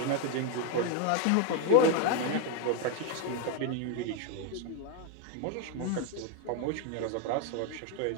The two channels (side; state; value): both; different; correlation 0.01